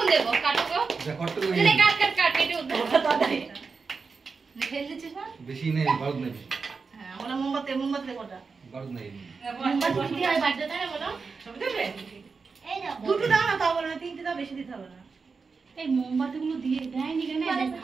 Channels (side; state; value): left; quieter; 4.8 dB